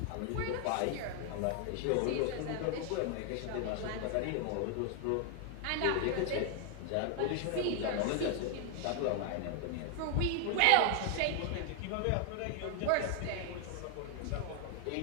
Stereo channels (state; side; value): different; both; correlation 0.00